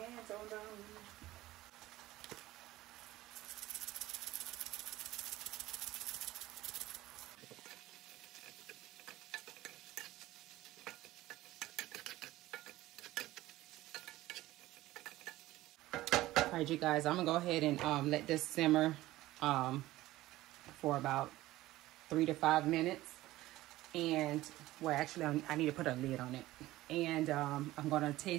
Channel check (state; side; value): quieter; left; 16.7 dB